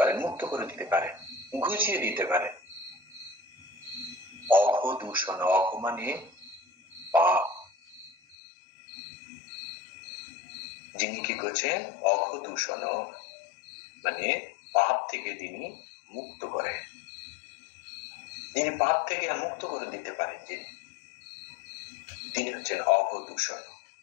মুক্ত করে দিতে পারেন, ঘুচিয়ে দিতে পারেন। অঘদূষণ, অঘ মানে পাপ, যিনি কি করছেন? অঘদূষণ মানে পাপ থেকে তিনি মুক্ত করেন, যিনি পাপ থেকে মুক্ত করে দিতে পারেন, তিনি হচ্ছেন অঘদূষণ।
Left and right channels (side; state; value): right; drops out; at 8.3 s